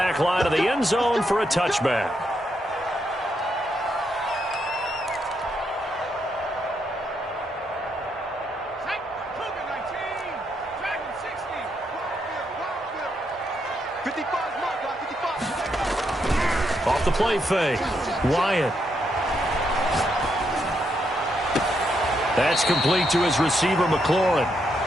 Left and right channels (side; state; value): both; normal; correlation 0.79